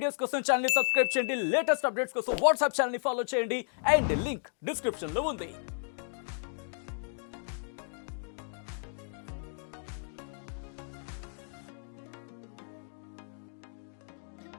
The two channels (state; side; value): silent; right; 56 dB below the other